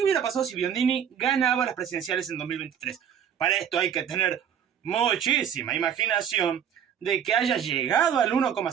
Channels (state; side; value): quieter; left; 8.7 dB